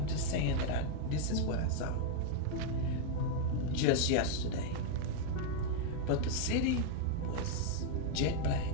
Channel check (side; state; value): both; different; correlation 0.00